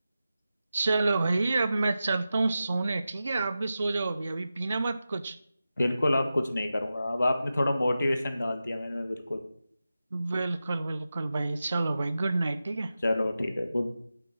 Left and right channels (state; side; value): inverted; both; correlation -0.92